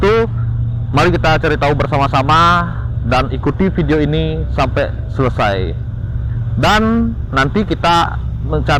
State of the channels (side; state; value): both; identical; correlation 1.00